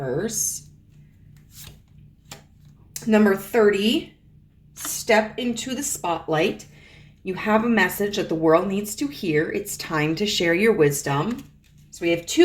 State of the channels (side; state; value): both; identical; correlation 1.00